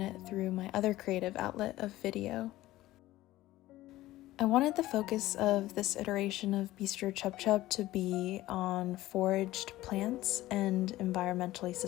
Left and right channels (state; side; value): quieter; right; 16.3 dB